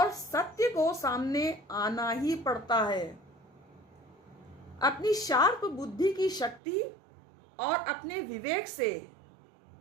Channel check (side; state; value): left; drops out; at 6.6 s